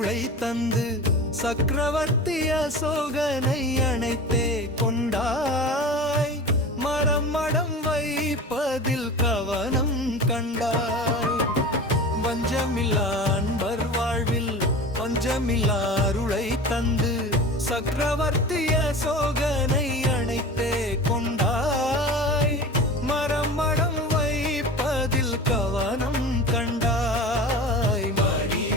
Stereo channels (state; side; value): normal; both; correlation 0.34